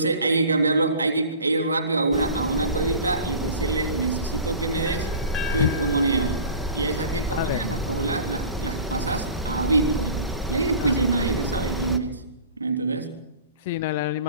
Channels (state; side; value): inverted; both; correlation -0.41